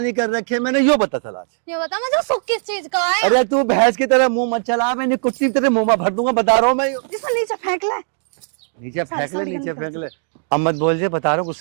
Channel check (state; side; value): silent; left; digital silence